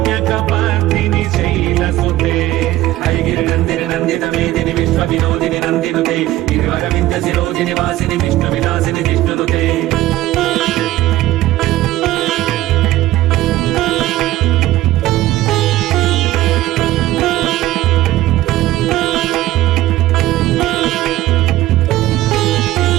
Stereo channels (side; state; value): left; quieter; 15.7 dB